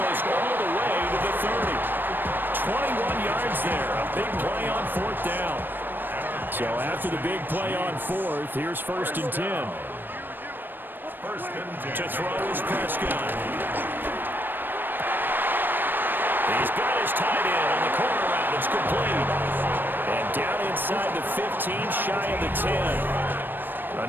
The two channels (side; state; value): left; late; 0.094 ms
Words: all the way to the 30. 21 yards there. A big play on 4th down. So after the big play on 4th, here's 1st and 10. 1st and 10. To throw is Prescott. He's got his tight end on the corner route. It's complete. And down inside the 15, shy of the 10.